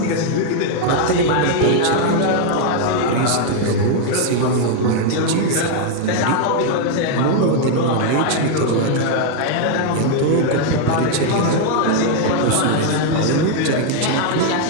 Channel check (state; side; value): different; both; correlation 0.00